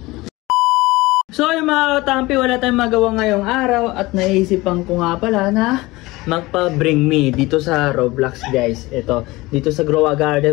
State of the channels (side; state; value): right; quieter; 20.7 dB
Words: So yung mga katampi, wala tayong magawa ngayong araw at naisipan ko nga pala na magpa-bring me dito sa Roblox guys. Ito, dito sa Grow a Garden